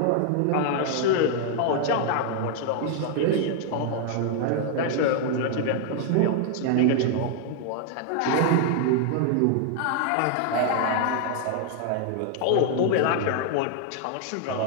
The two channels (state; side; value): different; both; correlation 0.00